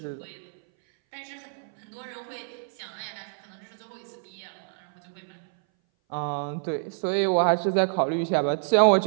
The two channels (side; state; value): left; silent; 58 dB below the other